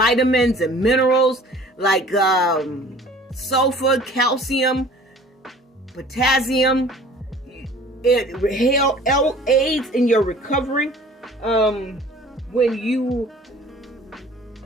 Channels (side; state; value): both; normal; correlation 0.49